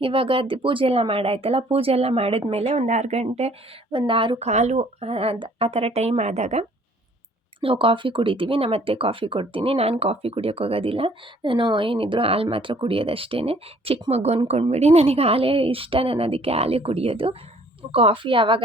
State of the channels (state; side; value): normal; both; correlation 0.58